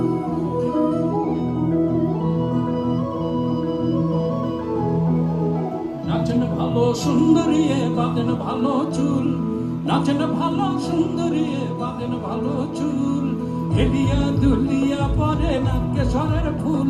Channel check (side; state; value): both; identical; correlation 1.00